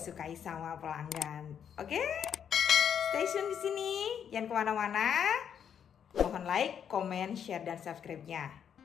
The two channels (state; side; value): quieter; right; 8.3 dB